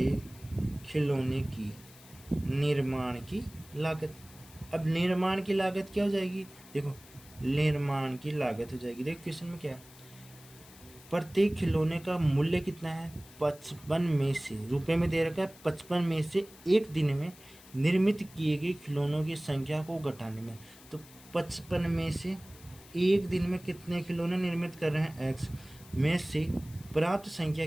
खिलौने की निर्माण की लागत। अब निर्माण की लागत क्या हो जाएगी, देखो निर्माण की लागत हो जाएगी, देखो क्वेश्चन में क्या है, प्रत्येक खिलौने का मूल्य कितना है, 55 में से, रुपए में दे रखा है 55 में से एक दिन में निर्मित किए गए खिलौनों की संख्या को घटाने में। तो 55 में से एक दिन में कितने खिलौने निर्मित कर रहे हैं, x में से प्राप्त संख्या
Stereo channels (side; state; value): left; noise; hiss, 22 dB below the sound